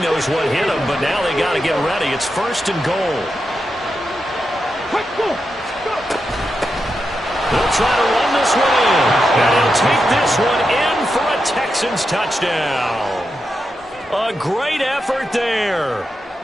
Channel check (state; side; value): normal; both; correlation 0.87